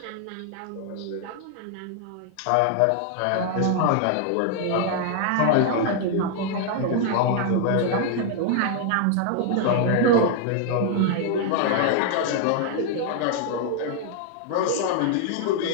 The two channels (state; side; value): different; both; correlation 0.00